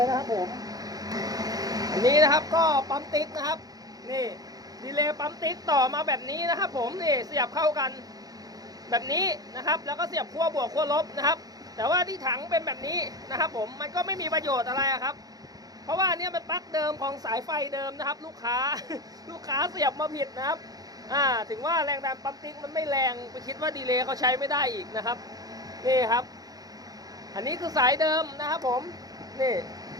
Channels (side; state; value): left; late; 0.18 ms